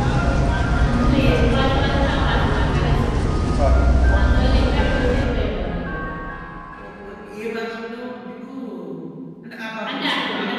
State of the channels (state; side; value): identical; both; correlation 1.00